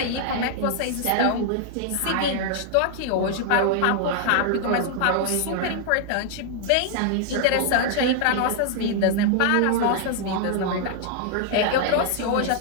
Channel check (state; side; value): different; both; correlation 0.00